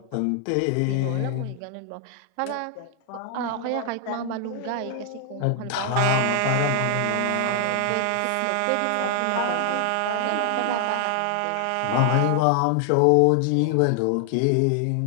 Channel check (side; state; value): both; different; correlation 0.00